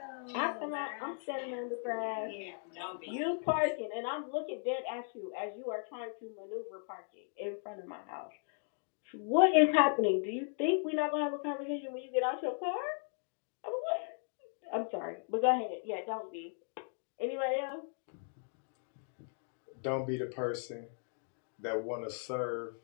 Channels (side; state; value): right; silent; 53 dB below the other